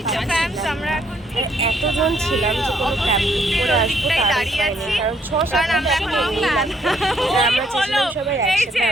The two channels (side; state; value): both; normal; correlation 0.69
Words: না। আর এতজন ছিলাম যে কোনো ক্যাব বুক করে আসবো তার হয়নি, কারণ 6-7 আমরা চেয়েছিলাম সবাই একসাথে